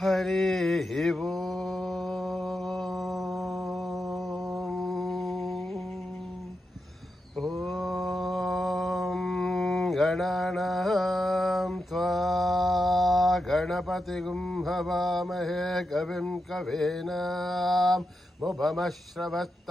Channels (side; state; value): both; normal; correlation 0.87